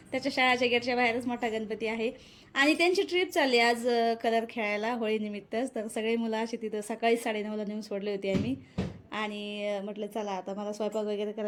त्याच्या शाळेच्या गेटच्या बाहेरच मोठा गणपती आहे आणि त्यांची ट्रिप चालली आज कलर खेळायला होळीनिमित्तच. तर सगळे मुलं अशी तिथं सकाळी 9:30ला नेऊन सोडले होते आम्ही. आणि म्हटलं चला आता मला स्वयंपाक वगैरे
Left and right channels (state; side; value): identical; both; correlation 1.00